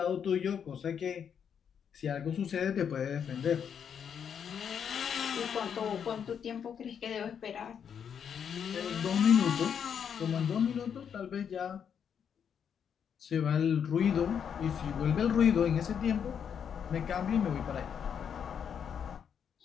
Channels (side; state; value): right; quieter; 7.8 dB